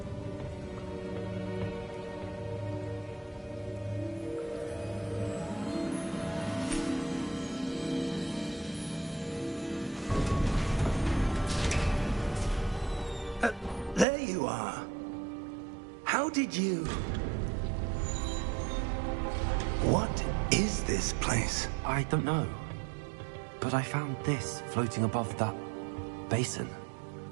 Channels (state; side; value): drops out; left; at 14.1 s